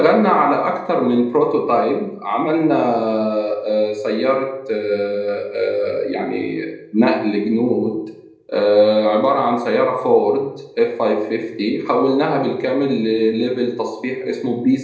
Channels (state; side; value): identical; both; correlation 1.00